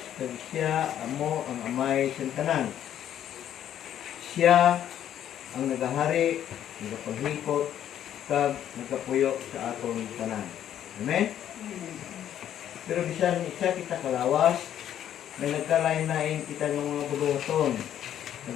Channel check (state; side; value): quieter; right; 10.6 dB